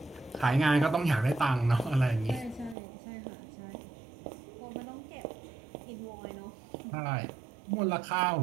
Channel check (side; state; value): left; drops out; at 2.8 s